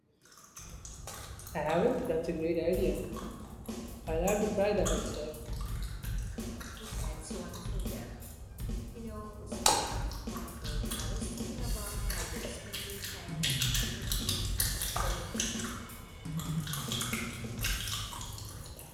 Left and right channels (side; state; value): both; identical; correlation 1.00